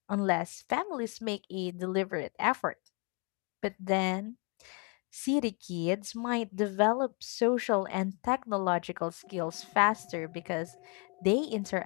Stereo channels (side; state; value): right; quieter; 33.2 dB